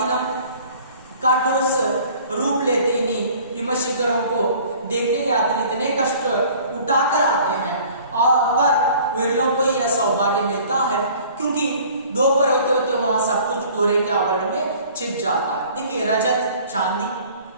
का ठोस रूप लेते ही हिम शिखरों को देखने यात्री इतने कष्ट उठाकर आते हैं और पर विरलों को यह सौभाग्य मिलता है क्योंकि दोपहर होते होते वहां सब कुछ कोहरे के आवरण में छिप जाता है. देखिए रजत चांदी,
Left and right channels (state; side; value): inverted; both; correlation -0.50